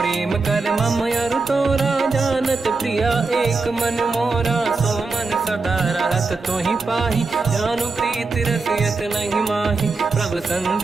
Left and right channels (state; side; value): quieter; left; 4.0 dB